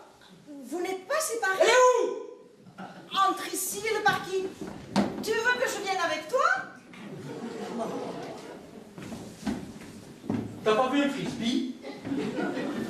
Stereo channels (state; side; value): identical; both; correlation 1.00